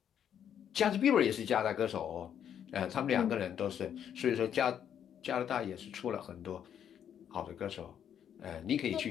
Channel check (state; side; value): quieter; right; 9.1 dB